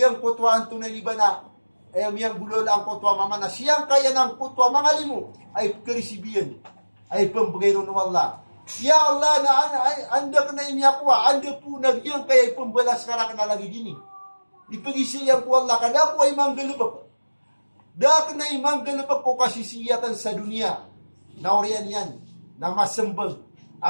kutwaan tunay liba na ay miyang bulol ang kutwa mama na siyang kaya ng kutwa mga limo ay karisibiyan ay pambagay ng Allah. Ya Allah na anda ka na inyakwa, anda po nagyang kaya ay pambalas ka na lagi dini. Ipagisiyang ko Allah kada po ay manggalubak. Dak na ay manggalubak ko kasisiyatan sa dunia. Na oriyan yan, na masembag.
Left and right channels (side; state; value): both; inverted; correlation -1.00